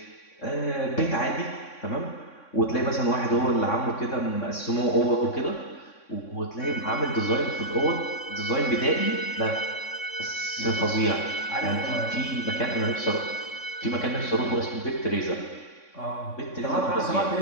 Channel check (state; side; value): late; right; 3.6 ms